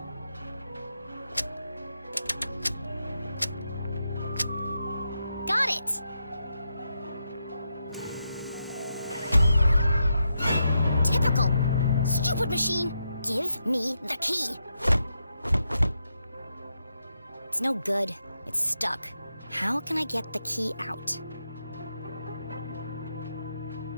Got it! Typical. Stupid machine! Give me the key! It's no good. It's stuck. How can I get the key out?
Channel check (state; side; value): inverted; both; correlation -0.84